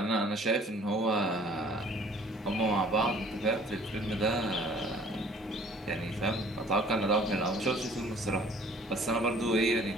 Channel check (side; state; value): both; normal; correlation 0.53